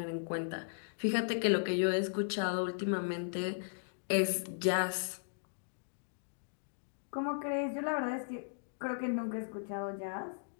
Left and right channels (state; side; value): silent; right; digital silence